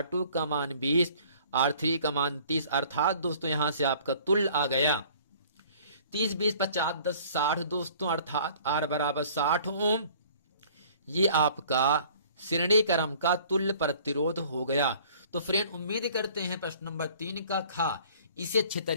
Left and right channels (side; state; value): both; inverted; correlation -0.52